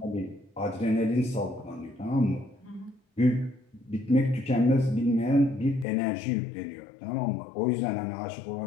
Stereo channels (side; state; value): right; drops out; at 5.9 s